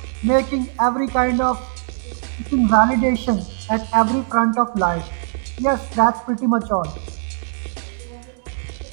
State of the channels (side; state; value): left; silent; digital silence